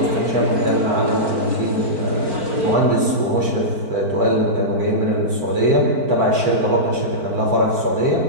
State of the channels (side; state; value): left; late; 4.5 ms